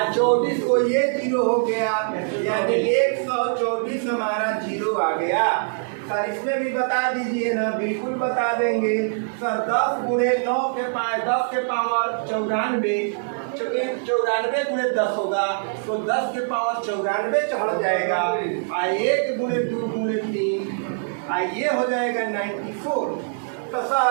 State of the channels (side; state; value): left; silent; digital silence